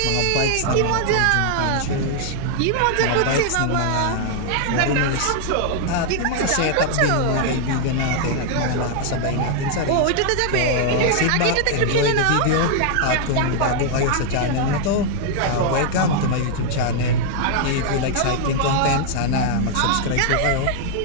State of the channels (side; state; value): both; different; correlation 0.00